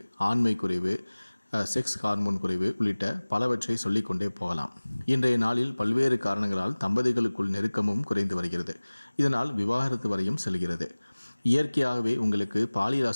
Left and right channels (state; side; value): inverted; both; correlation -1.00